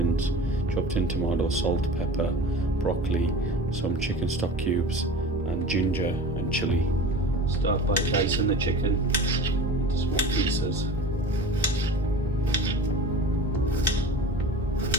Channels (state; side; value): normal; both; correlation 0.36